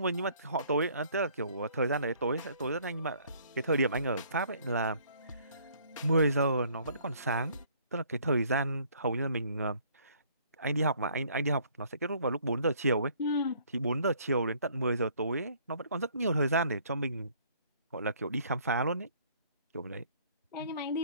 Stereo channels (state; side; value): inverted; both; correlation -0.60